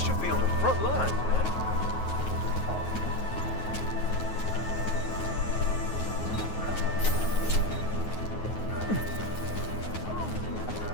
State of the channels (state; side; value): late; right; 9.4 ms